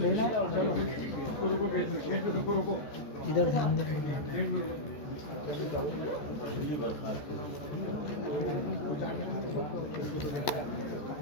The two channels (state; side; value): late; right; 14 ms